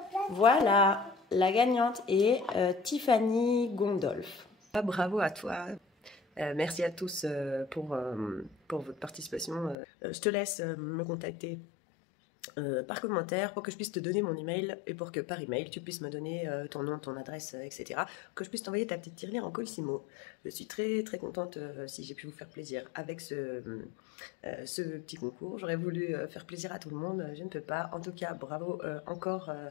Voilà, la gagnante est Tiffany Gondolf. Bravo à toi. Merci à tous pour votre participation. Je te laisse me contacter par commentaire pour que je puisse te donner mon email et pour que par email tu puisses me donner ton nom, ton adresse, etc. Que je puisse t'envoyer ta petite tirelire en colissimo. Je suis très très contente si j'ai pu vous faire plaisir avec ce petit concours. J'aurais voulu faire plaisir à tout le monde, je ne peux pas. En tout cas, bravo encore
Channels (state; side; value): drops out; right; at 9.8 s